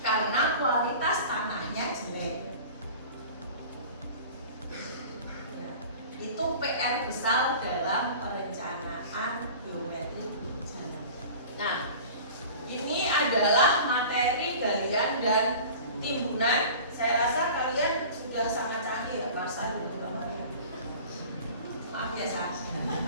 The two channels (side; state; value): both; inverted; correlation -0.40